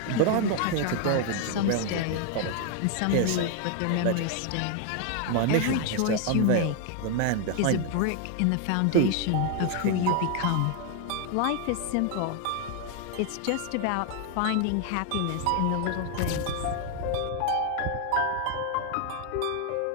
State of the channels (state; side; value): different; both; correlation 0.01